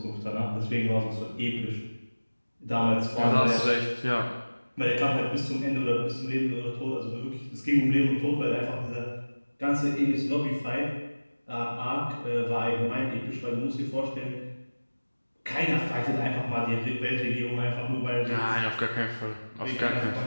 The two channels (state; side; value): inverted; both; correlation -1.00